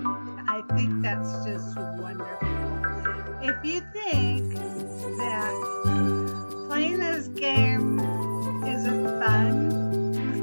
I think that's just wonderful. If you think that playing this game isn't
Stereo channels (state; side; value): inverted; both; correlation -1.00